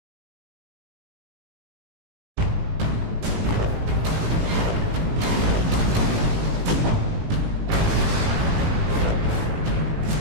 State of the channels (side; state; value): left; late; 18 ms